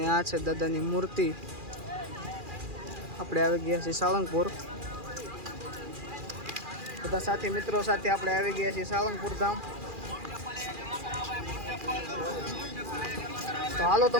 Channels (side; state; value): left; late; 2.4 ms